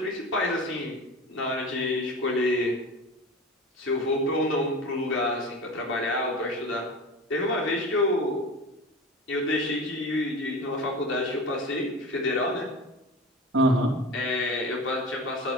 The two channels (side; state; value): both; normal; correlation 0.32